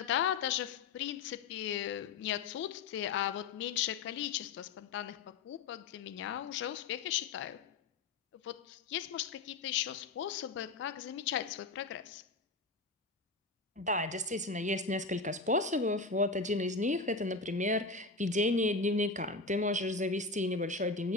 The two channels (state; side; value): quieter; right; 3.9 dB